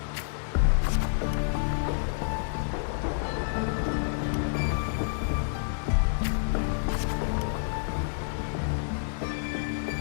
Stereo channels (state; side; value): silent; right; digital silence